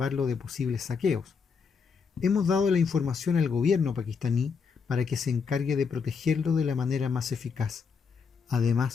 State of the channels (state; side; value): quieter; right; 5.7 dB